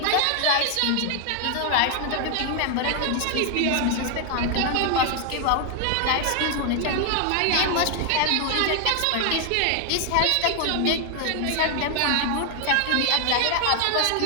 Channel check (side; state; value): both; different; correlation 0.00